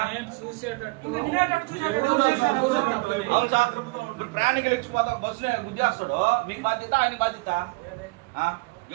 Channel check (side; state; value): left; quieter; 26.2 dB